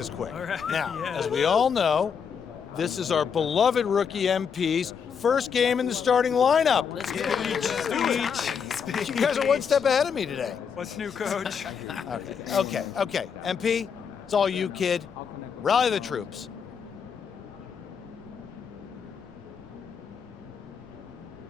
quick. Now, as we all know, this is our beloved rookie MP's first game in the starting lineup. Let's go. Speech. You guys are one step ahead of me today. What's new, Coach? Okay. MP, it's all you, kid. Rally the troops.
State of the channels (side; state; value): right; quieter; 6.8 dB